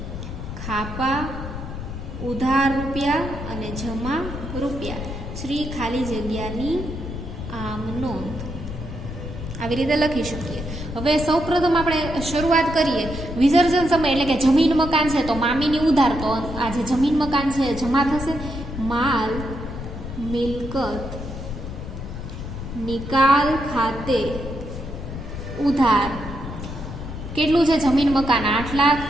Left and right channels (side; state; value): left; noise; rumble, 8 dB below the sound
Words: ખાપા, ઉધાર રૂપિયા અને જમા રૂપિયા, શ્રી ખાલી જગ્યાની આમ નોંધ. આવી રીતે લખી શકીએ. હવે સૌપ્રથમ આપણે શરૂઆત કરીએ. વિસર્જન સમય એટલે કે જમીન મકાન છે તો મામીની ઉધાર, તો આ જે જમીન મકાન છે જમા થશે. માલ મિલકત નિકાલ ખાતે ઉધાર કેટલું છે? જમીન મકાન 8 લાખ.